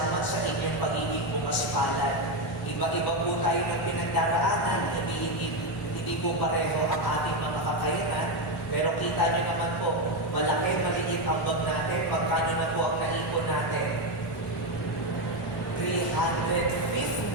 sa inyong pagiging pumaspalad. Iba-iba po tayo ng pinagdaraanan, hindi po pareho ang ating mga kakayanan, pero kita nyo naman po, malaki, maliit ang bag natin, magkano na po ang naipon natin?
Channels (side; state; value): both; normal; correlation 0.09